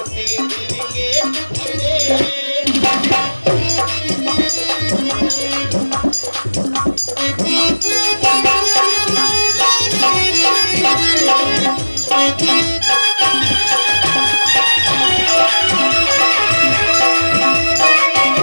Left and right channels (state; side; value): inverted; both; correlation -1.00